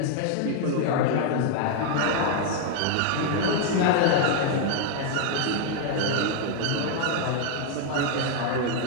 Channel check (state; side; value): different; both; correlation 0.00